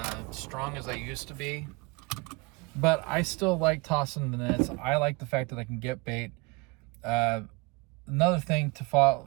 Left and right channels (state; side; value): quieter; left; 26.3 dB